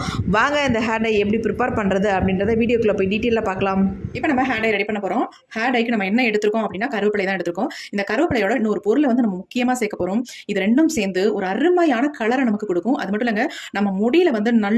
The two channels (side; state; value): both; identical; correlation 1.00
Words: வாங்க இந்த ஹேர் டை எப்படி ப்ரிப்பேர் பண்ணுறது அப்படின்றத வீடியோக்குள்ளே போய் டீட்டெயிலாக பார்க்கலாம். இப்போ நம்ம ஹேர் டை ரெடி பண்ண போகிறோம். ஹேர் டைக்கு நம்ம என்ன எடுத்துருக்கோம் அப்படின்னா கருவேப்பிலை தான் எடுத்துருக்கோம். இந்த கருவேப்பிலையோட இன்னொரு பொருளை வந்து நம்ம முக்கியமாக சேர்க்க போகிறோம். இது ரெண்டும் சேர்ந்து ஒரு அருமையான கலரை நமக்கு கொடுக்கும். அது மட்டும் இல்லைங்க, நம்ம முடியில் வந்து